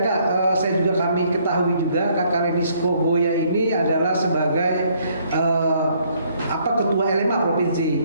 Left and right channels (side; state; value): both; inverted; correlation -0.66